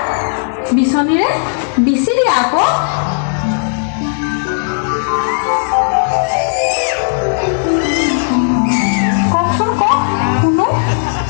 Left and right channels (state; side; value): silent; right; digital silence